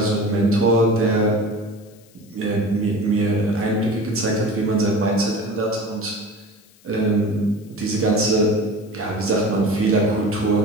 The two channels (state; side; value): noise; left; hiss, 29 dB below the sound